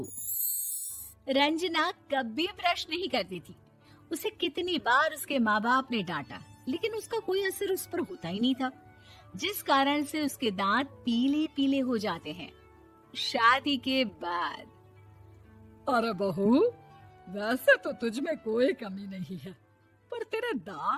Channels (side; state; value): both; identical; correlation 1.00